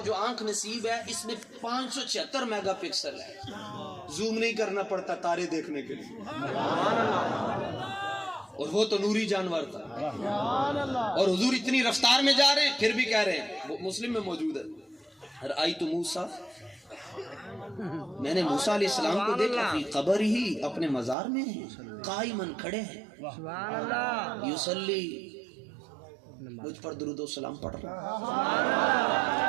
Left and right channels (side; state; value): left; drops out; at 21.2 s